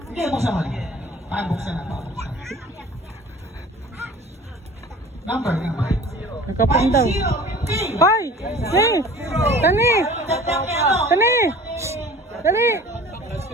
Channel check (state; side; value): normal; both; correlation 0.44